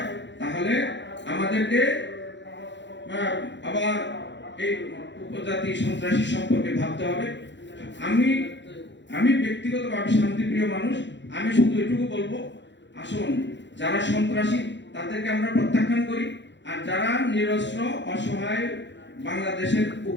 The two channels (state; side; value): late; right; 0.52 ms